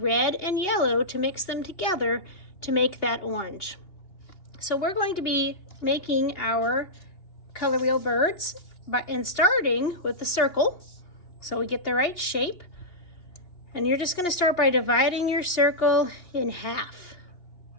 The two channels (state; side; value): late; right; 2.8 ms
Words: and yellow to mix them together to make that orange. So we're going to be making our color wheel birds and starting with the circle so we get the right shape. And you're just going to start by dividing your circle in half.